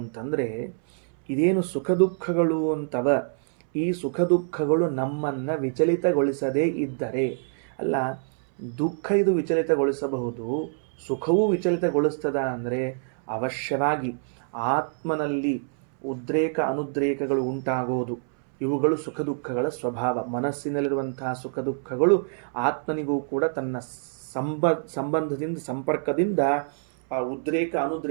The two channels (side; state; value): left; silent; 61 dB below the other